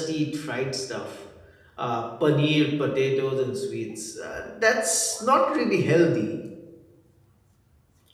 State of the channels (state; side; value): identical; both; correlation 1.00